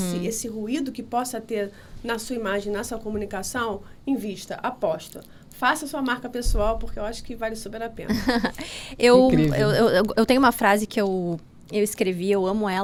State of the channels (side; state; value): both; identical; correlation 1.00